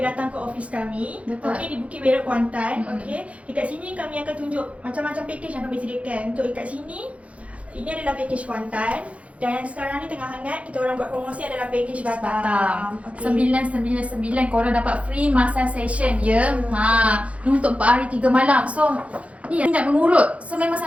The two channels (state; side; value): late; left; 0.064 ms